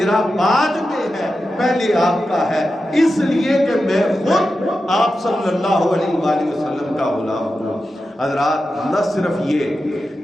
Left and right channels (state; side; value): normal; both; correlation 0.91